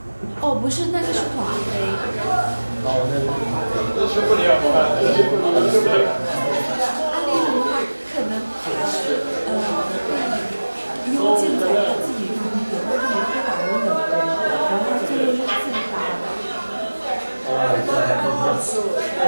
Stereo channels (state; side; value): inverted; both; correlation -1.00